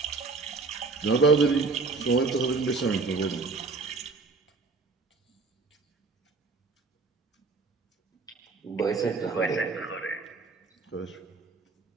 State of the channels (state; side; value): quieter; left; 4.0 dB